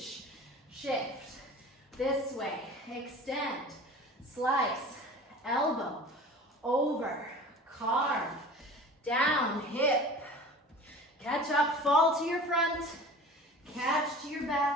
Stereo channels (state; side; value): normal; both; correlation 0.40